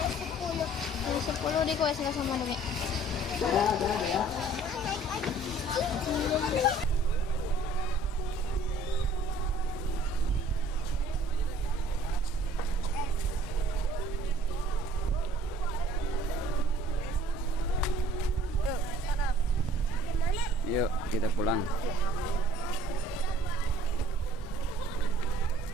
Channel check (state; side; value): normal; both; correlation 0.54